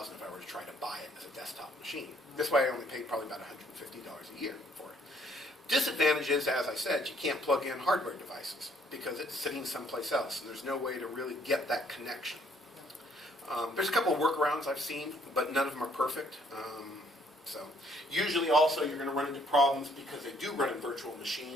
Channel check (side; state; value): both; normal; correlation 0.65